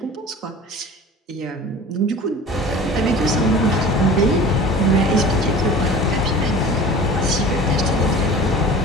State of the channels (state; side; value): normal; both; correlation 0.40